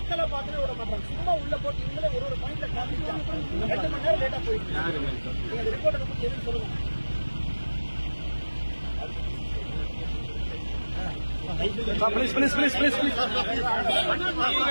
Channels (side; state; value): both; inverted; correlation -1.00